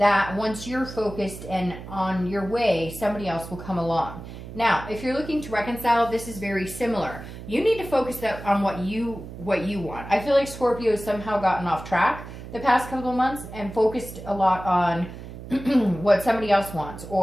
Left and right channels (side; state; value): right; noise; hum, 12 dB below the sound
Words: once you're focused and on your way, somebody else will come along. Now, if you're looking to reconcile, this is very similar. You need to focus on what you want. I feel like Scorpio has somehow gotten off track the past couple of months and focused a lot on what somebody else wants.